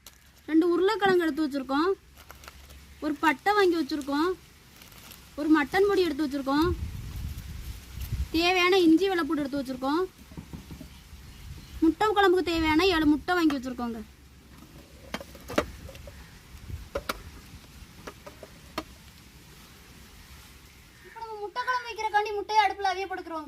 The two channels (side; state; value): both; identical; correlation 1.00